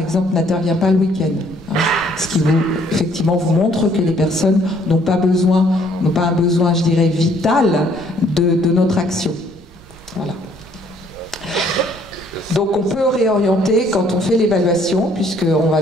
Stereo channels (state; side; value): noise; right; rumble, 23 dB below the sound